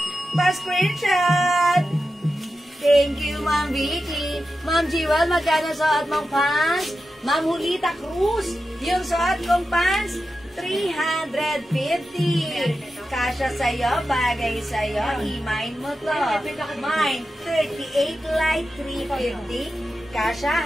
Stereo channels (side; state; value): both; normal; correlation 0.91